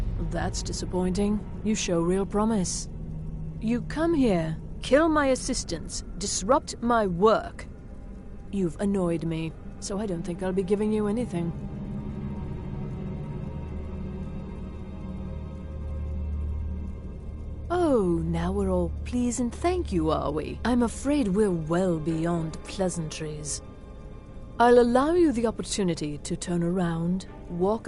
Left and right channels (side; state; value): both; identical; correlation 1.00